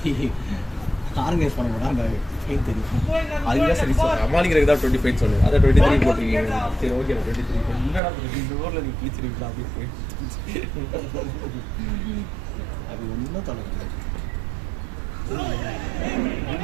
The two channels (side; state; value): left; drops out; at 8.0 s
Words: ஆர்கனைஸ் பண்ண மாட்டா அந்த ஃபைன் தெரியும். அதுதான் சரி சார் சமாளிக்கிறதுக்கு தான் 25 சொன்னேன். அதான் 23 போட்டிருக்கீங்க. சரி ஓகே 23 என்னடா இந்த ஊரில் நீ கிழிச்சிருக்கீங்களா அப்படின்னு அது ஒன்றும் தொலைக்கல